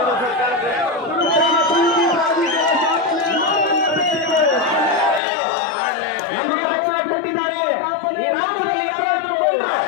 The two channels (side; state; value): right; drops out; at 5.2 s